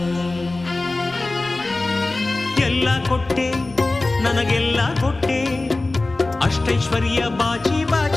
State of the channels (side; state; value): right; quieter; 3.1 dB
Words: ಎಲ್ಲ ಕೊಟ್ಟೆ ನನಗೆಲ್ಲ ಕೊಟ್ಟೆ ಅಷ್ಟೈಶ್ವರ್ಯ ಬಾಚಿ